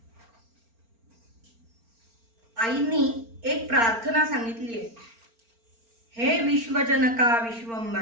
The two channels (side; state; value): left; late; 4.4 ms